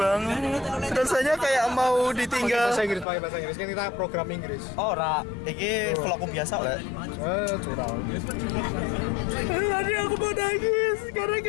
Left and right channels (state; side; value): drops out; right; at 3.1 s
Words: Rasanya kayak mau ditinggal. Bahasa Inggris, pakai bahasa Inggris kan kita program Inggris. Ora, iki vlogku biasa lah. Curang. Tadi aku mau nangis karena